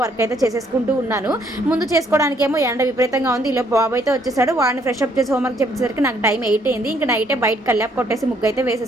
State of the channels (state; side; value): normal; both; correlation 0.67